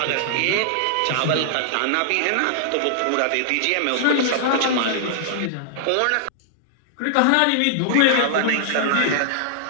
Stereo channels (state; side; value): different; both; correlation -0.01